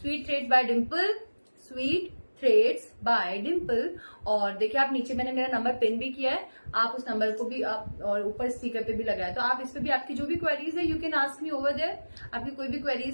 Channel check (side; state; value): both; inverted; correlation -1.00